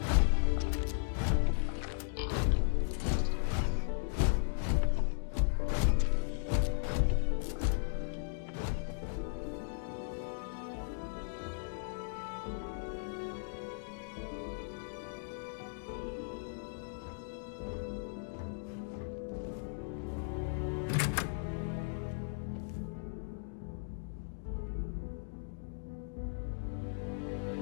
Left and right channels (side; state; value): right; silent; digital silence